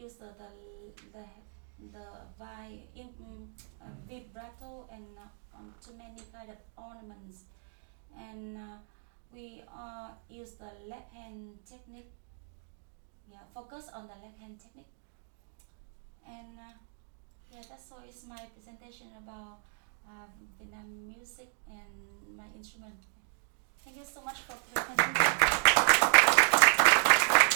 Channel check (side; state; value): left; silent; digital silence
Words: use the vibrato and too many kind of ornaments, and we use the left hand technique. Focus on the left hand technique, and that's all is my presentation about Vietnam music and my instrument. Thank you so much for presenting.